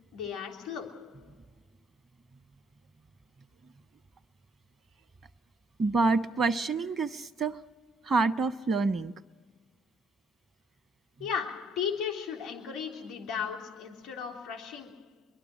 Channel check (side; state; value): both; normal; correlation 0.66